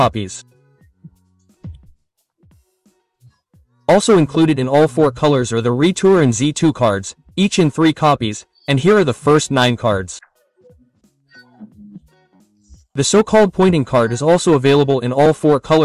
Also included in all 4 colors are the Retour and Z2 cards, each in 3 copies, and here are the first 9 cards. The so-called pointing card is also available in all 4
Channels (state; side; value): identical; both; correlation 1.00